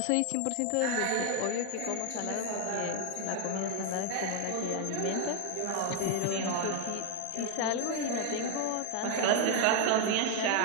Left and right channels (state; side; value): different; both; correlation 0.00